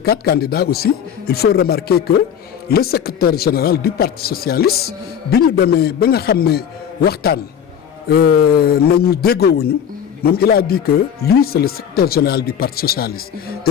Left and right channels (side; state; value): right; quieter; 8.5 dB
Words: 4 candidats aussi il faut remarquer que le secrétaire général du Parti socialiste bi ñu demee ba nga xam ne waxtaan nañu déggoowuñu moom il a dit que lui c'est le secrétaire général du Parti socialiste